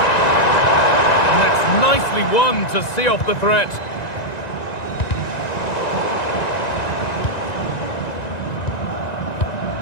Nicely won to see off the threat.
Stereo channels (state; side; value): late; right; 1.9 ms